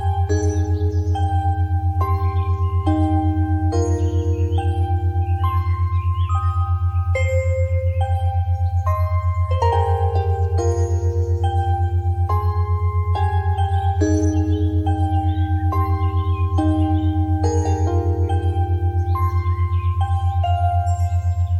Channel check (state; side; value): identical; both; correlation 1.00